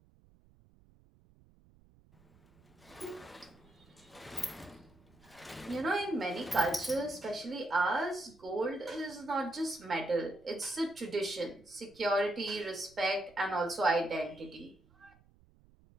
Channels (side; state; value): right; noise; rumble, 28 dB below the sound